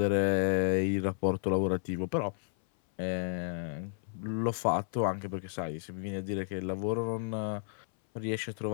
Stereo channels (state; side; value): silent; right; 56 dB below the other